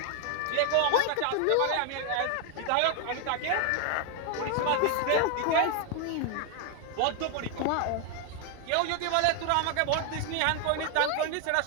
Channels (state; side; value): different; both; correlation 0.00